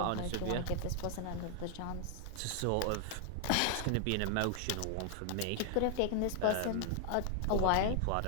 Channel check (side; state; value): both; different; correlation 0.00